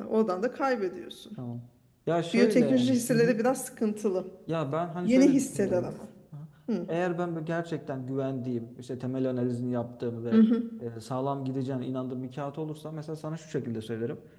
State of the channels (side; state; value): both; identical; correlation 1.00